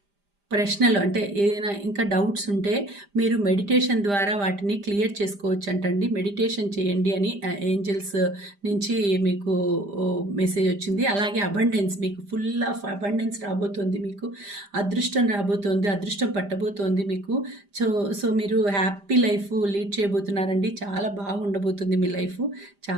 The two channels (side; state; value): left; late; 5.0 ms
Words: ప్రశ్నలు అంటే ఏదైనా ఇంకా డౌట్స్ ఉంటే మీరు మెడిటేషన్ ద్వారా వాటిని క్లియర్ చేసుకోవచ్చు అంటండి. మెడిటేషన్ చేయండి అని ఏంజల్స్ నుంచి మీకు మెసేజ్ వచ్చింది. అలాగే అబండెన్స్, మీకు ఫుల్ ఆఫ్ అబండెన్స్ రాబోతోంది, మీకు అదృష్టం రాబోతోంది, అదృష్టం పట్టబోతోంది మీకు. సో మీరు హ్యాపీ లైఫ్ లీడ్ చేయబోతున్నారండి. చాలా బాగా ఉండబోతుంది మీ లైఫ్.